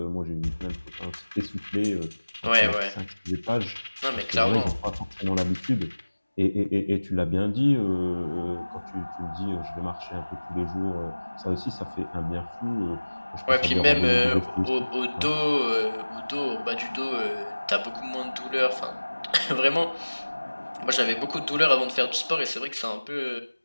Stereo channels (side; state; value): both; inverted; correlation -1.00